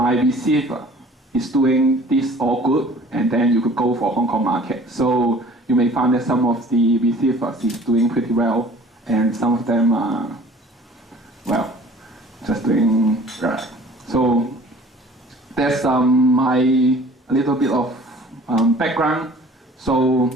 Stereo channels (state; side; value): normal; both; correlation 0.49